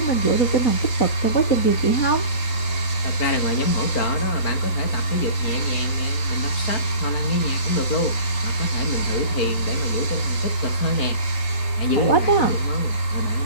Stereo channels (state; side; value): late; right; 4.5 ms